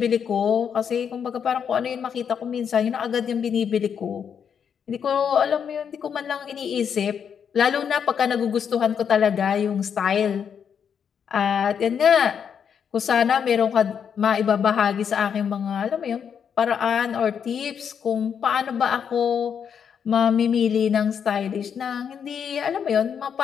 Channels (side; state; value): right; quieter; 7.5 dB